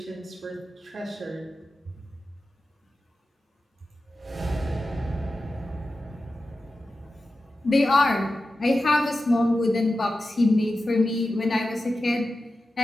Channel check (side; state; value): both; normal; correlation 0.93